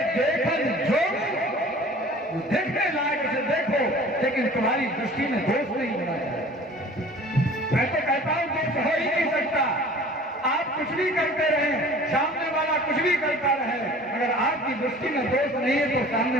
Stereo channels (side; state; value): both; normal; correlation 0.46